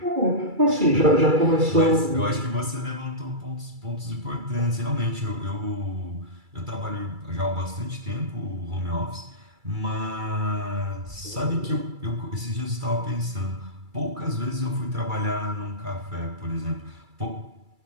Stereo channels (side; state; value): left; late; 2.3 ms